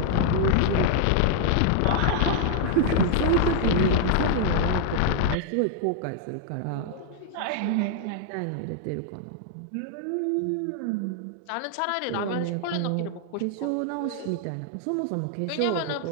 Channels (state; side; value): different; both; correlation 0.00